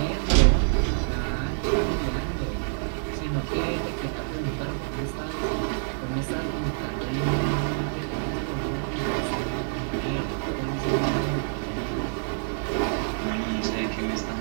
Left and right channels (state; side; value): silent; left; digital silence